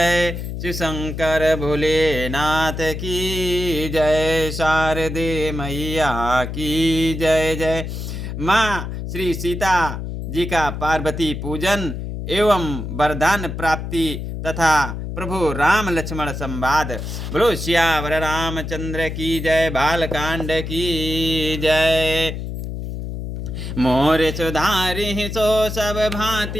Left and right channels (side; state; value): left; noise; hum, 6 dB below the sound